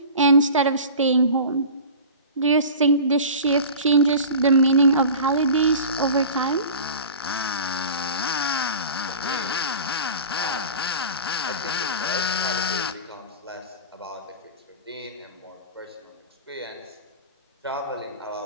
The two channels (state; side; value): inverted; both; correlation -0.37